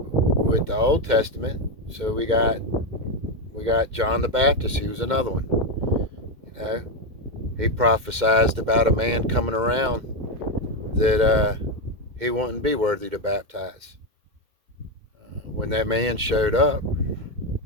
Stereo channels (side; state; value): left; late; 2.1 ms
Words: the Old Testament, so we got John the Baptist. He was another one. You know, he prophesied about a man coming around that he wouldn't be worthy to baptize. When that man showed up,